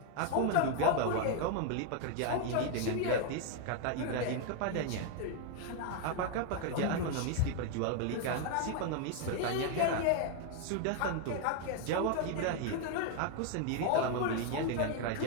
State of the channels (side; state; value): both; different; correlation 0.01